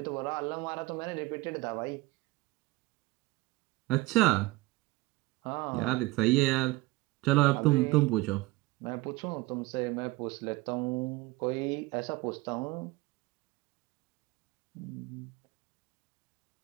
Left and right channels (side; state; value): left; quieter; 20.4 dB